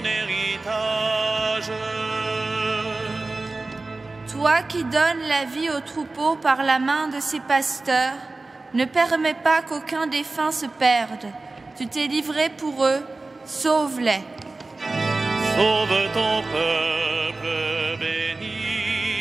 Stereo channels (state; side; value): quieter; left; 3.3 dB